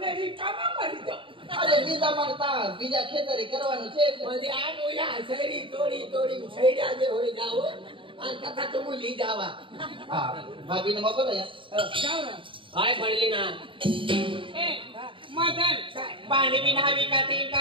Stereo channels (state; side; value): late; left; 0.25 ms